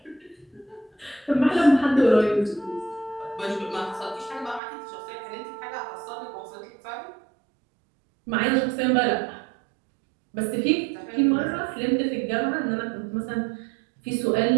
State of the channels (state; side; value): drops out; left; at 4.6 s